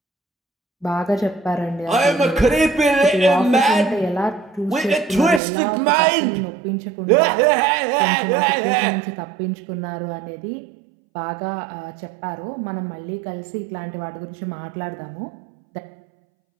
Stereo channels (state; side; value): drops out; left; at 5.4 s